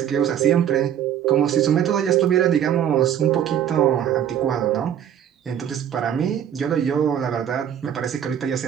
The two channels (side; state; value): left; quieter; 9.7 dB